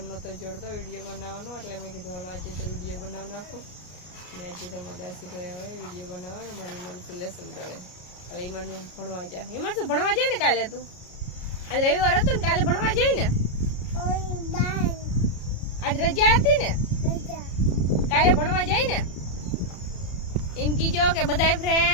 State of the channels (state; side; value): late; right; 33 ms